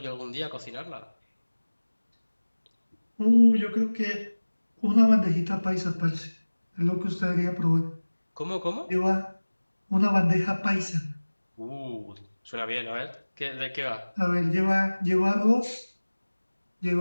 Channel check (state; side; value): inverted; both; correlation -1.00